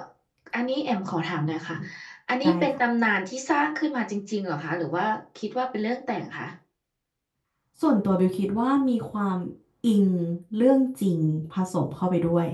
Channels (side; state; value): both; identical; correlation 1.00